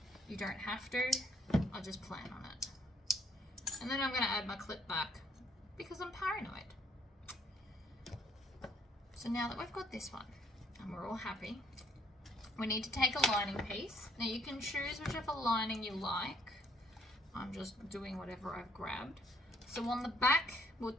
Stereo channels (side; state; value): both; normal; correlation 0.67